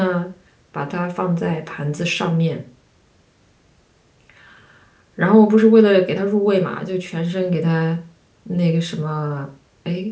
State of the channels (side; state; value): both; identical; correlation 1.00